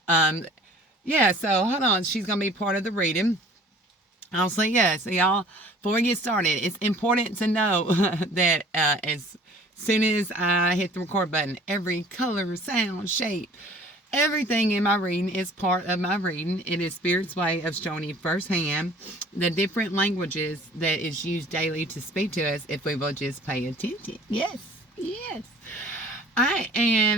Um, so hold on. She's going to be part of the reading. I'll say yes. So y'all, before we get started, it's important to know that as soon as I hit the record button, every color, sound, shape, everything in my reading is part of my reading. It is Spirit's way of showing you firsthand the different languages that is used daily to speak to us if we will just pay attention. Yes, yes. All right,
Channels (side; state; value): both; normal; correlation 0.50